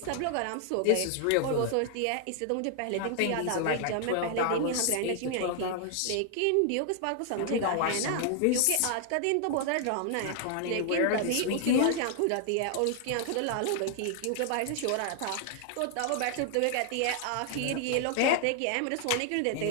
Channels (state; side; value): different; both; correlation 0.00